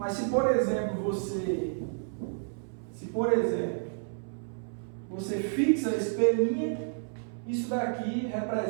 se, por exemplo, você fixa esse P', isso daqui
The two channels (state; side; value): silent; left; 57 dB below the other